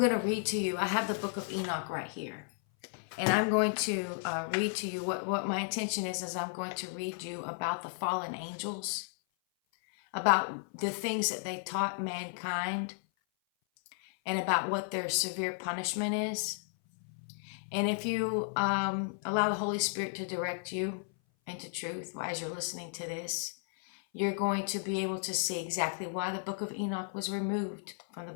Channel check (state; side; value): silent; right; 55 dB below the other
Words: to read to you. I have the book of Enoch right here. And I'm going to read to you what my intention is I'm going to read you about the fallen angels, about the things that they taught mankind, and about what their severe punishment is. And if you allow the Holy Spirit to direct you into truth as you're listening to this, you're going to be able to see exactly why the book of Enoch was removed from the